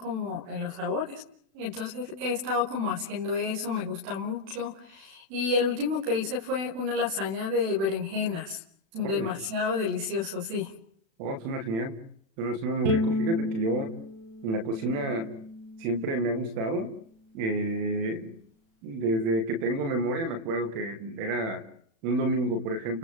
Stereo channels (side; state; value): left; late; 36 ms